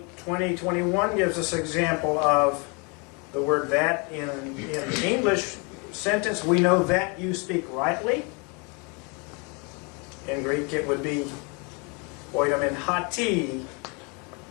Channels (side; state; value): right; quieter; 32.1 dB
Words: 20:21 gives us an example of the word that in the English sentence. We know that you speak rightly. In Greek it would be oidamin hati